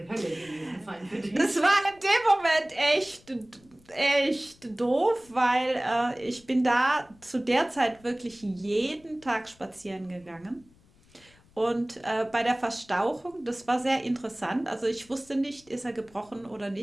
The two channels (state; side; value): noise; left; rumble, 29 dB below the sound